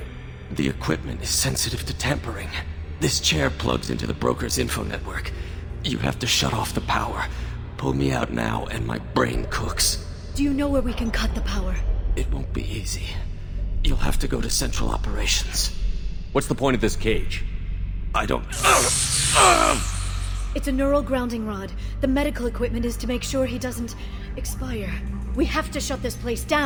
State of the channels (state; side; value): identical; both; correlation 1.00